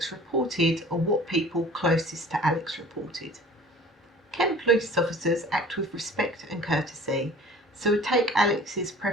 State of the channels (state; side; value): normal; both; correlation 0.46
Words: reported or what people closest to Alex reported. Kent police officers act with respect and courtesy, so would take Alex's